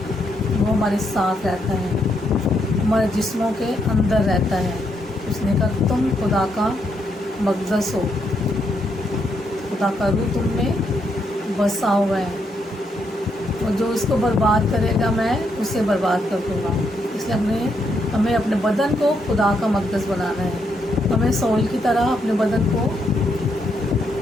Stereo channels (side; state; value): both; normal; correlation 0.77